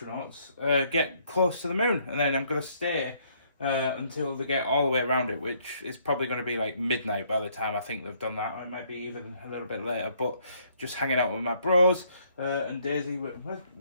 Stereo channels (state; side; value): inverted; both; correlation -0.66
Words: get close to the moon. And then I'm going to stay until they get all the way around it, which is probably going to be like midnight by the time I think they've done that. Or it might be even a little bit later. But just hanging out with my bros and Daisy.